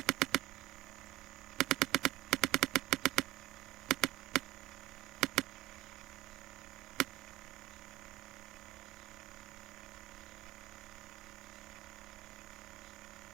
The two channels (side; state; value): left; quieter; 16.9 dB